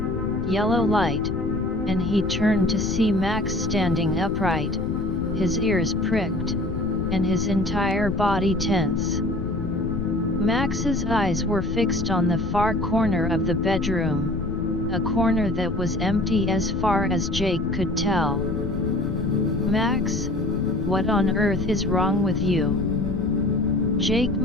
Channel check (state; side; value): noise; left; rumble, 6 dB below the sound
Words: yellow light, and he turned to see Max standing upright, his ears pricked, and his entire body tense. Max's eyes were fixed on the far corner of the bedroom, a corner that was empty as far as Jake could tell. "Max, what on earth is wrong with you?" Jake